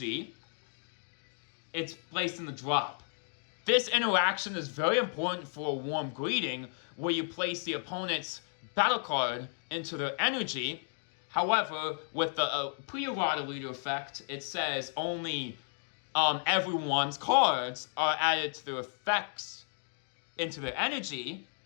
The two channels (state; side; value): silent; right; 56 dB below the other